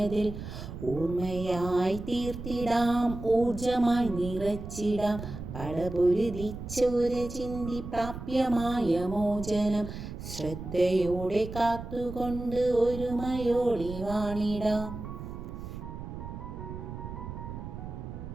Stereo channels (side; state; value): right; noise; rumble, 9 dB below the sound